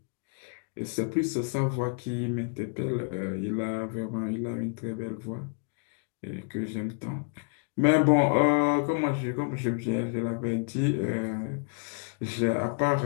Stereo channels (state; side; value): quieter; right; 36.6 dB